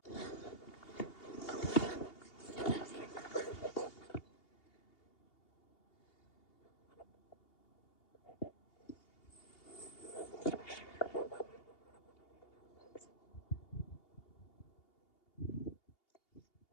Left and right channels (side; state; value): right; late; 2.8 ms